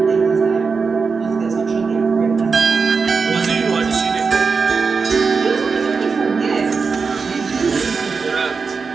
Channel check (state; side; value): quieter; left; 5.0 dB